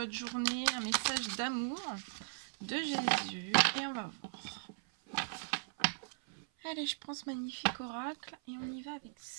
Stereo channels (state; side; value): silent; left; 52 dB below the other